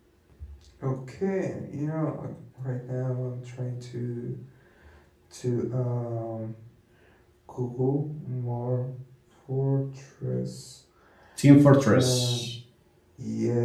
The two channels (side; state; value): both; identical; correlation 1.00